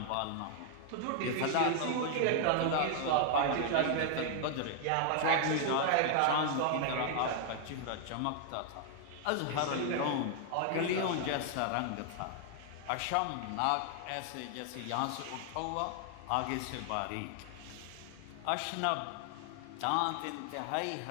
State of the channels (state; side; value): different; both; correlation 0.00